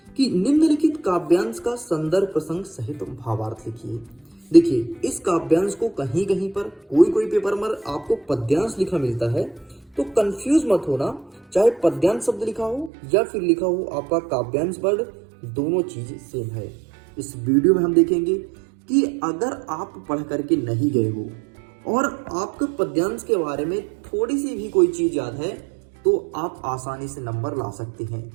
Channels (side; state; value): left; drops out; at 12.9 s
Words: कि निम्नलिखित काव्यांश का संदर्भ प्रसंग सहित भावार्थ लिखिए। देखिए, इस काव्यांश को कहीं कहीं पर कोई पेपर में आपको पद्यांश लिखा मिलता है, तो कंफ्यूज मत होना। चाहे पद्यांश शब्द लिखा हो या फिर लिखा हो आपका काव्यांश वर्ड, दोनों चीज सेम है। इस वीडियो में हम देखेंगे कि अगर आप पढ़ करके नहीं गए हो और आपको पद्यांश के बारे में थोड़ी सी भी कोई चीज याद है, तो आप आसानी से नंबर ला सकते हैं।